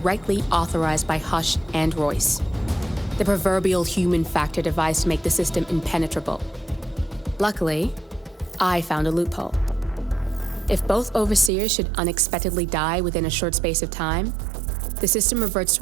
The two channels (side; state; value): left; drops out; at 11.5 s